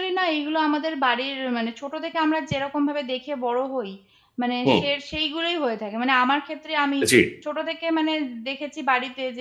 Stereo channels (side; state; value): both; identical; correlation 1.00